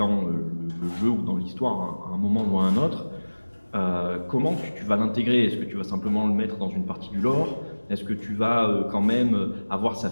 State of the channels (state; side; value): inverted; both; correlation -1.00